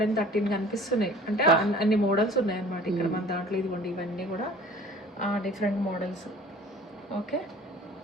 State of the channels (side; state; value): both; normal; correlation 0.47